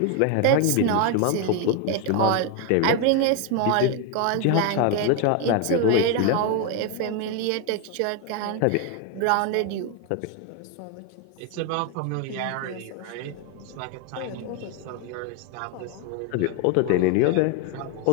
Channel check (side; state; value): both; different; correlation 0.01